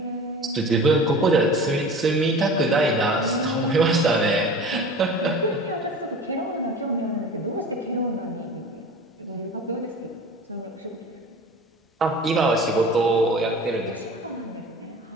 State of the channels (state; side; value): normal; both; correlation 0.38